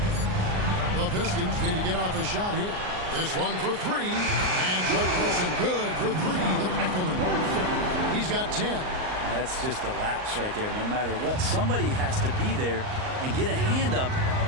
The Pistons need to get off a shot here. This one for 3. And Chuck Person good for 3. The rifleman. He's got 10. That's just a lapse right there. No matter what, somebody has to be there and get a hand up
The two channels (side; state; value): left; late; 38 ms